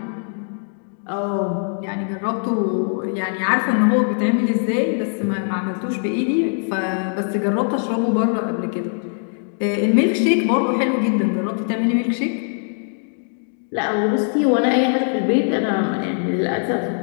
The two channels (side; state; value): right; silent; 56 dB below the other